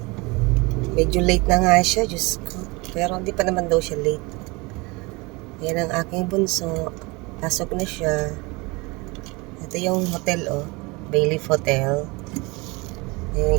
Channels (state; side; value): quieter; left; 25.7 dB